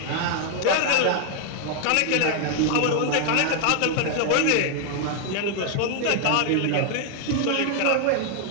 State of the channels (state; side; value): different; both; correlation 0.00